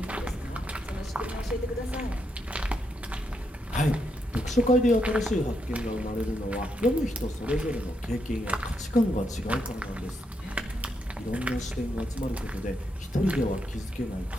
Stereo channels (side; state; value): both; normal; correlation 0.80